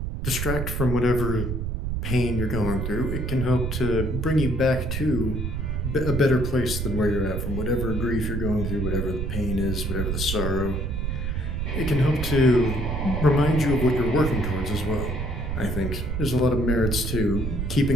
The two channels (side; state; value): right; noise; rumble, 2 dB below the sound